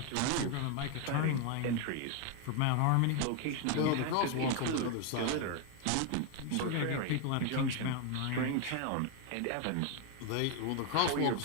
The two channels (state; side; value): different; both; correlation 0.01